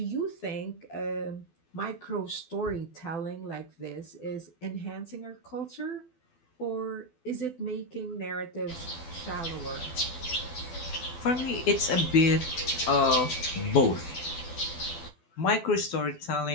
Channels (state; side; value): late; right; 12 ms